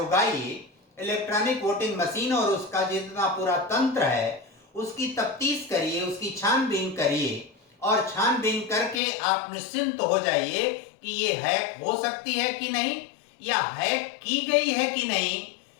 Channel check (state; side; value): drops out; right; at 9.0 s